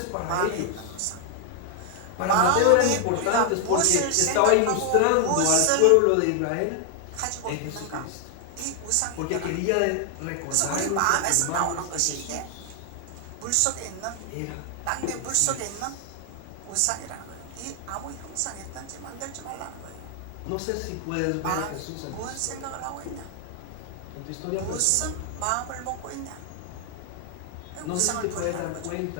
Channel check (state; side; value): different; both; correlation 0.00